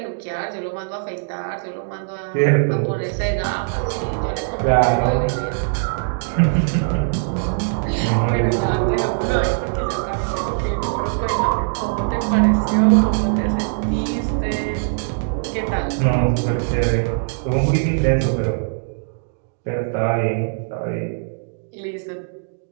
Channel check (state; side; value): silent; left; digital silence